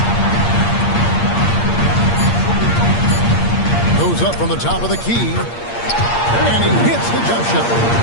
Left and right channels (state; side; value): late; right; 8.6 ms